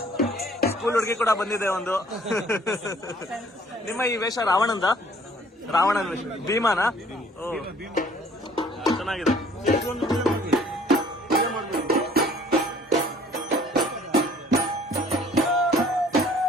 ಸ್ಕೂಲ್ ಹುಡುಗಿ ಕೂಡ ಬಂದಿದೆ ಒಂದು. ನಿಮ್ಮ ಈ ವೇಷ ರಾವಣನ ವೇಷ? ಭೀಮಾನ? ಓ ಚೆನ್ನಾಗಿದೆ.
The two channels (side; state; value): both; normal; correlation 0.56